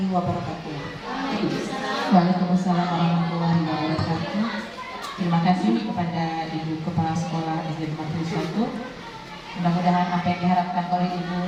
wabarakatuh. Waalaikumsalam warahmatullahi wabarakatuh. Terima kasih kepada Ibu Kepala Sekolah SD 51. Mudah-mudahan apa yang diharapkan oleh Ibu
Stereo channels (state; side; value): identical; both; correlation 1.00